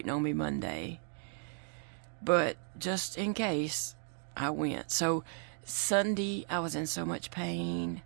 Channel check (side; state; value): left; silent; 54 dB below the other